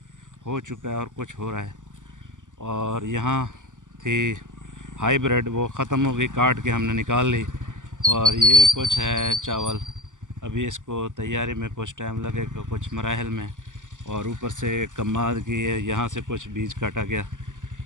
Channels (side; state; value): left; late; 0.87 ms